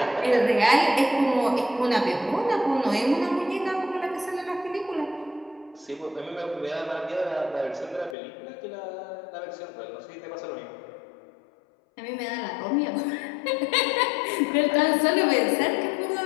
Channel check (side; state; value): right; drops out; at 8.2 s